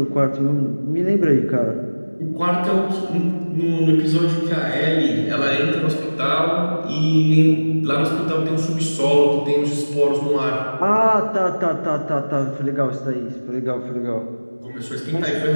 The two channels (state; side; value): inverted; both; correlation -1.00